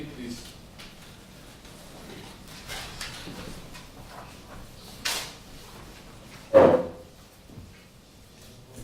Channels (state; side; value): identical; both; correlation 1.00